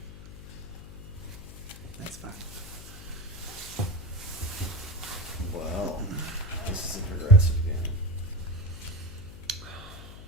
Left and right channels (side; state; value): left; noise; hum, 14 dB below the sound